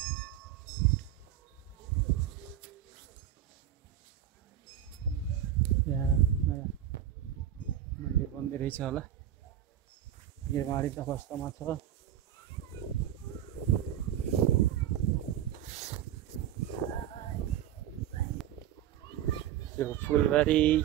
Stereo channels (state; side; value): quieter; left; 11.1 dB